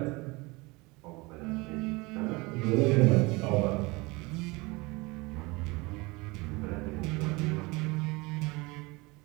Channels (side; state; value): left; quieter; 24.5 dB